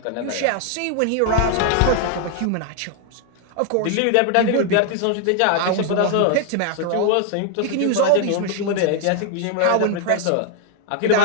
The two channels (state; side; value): different; both; correlation 0.00